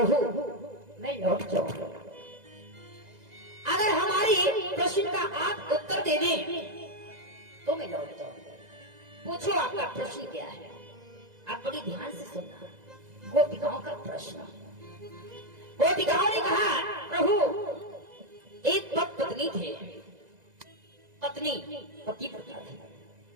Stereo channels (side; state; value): left; late; 2.0 ms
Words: मैं लौट जाऊंगा, अगर हमारी प्रश्न का आप उत्तर दे दें तो मैं लौट जाऊंगा। पूछो आपका प्रश्न क्या है? आप बड़ी ध्यान से सुनना। गोपिकाओं का प्रश्न। गोपिकाओं ने कहा, प्रभु एक पत्नी थे, पत्नी पति प्रथा थी,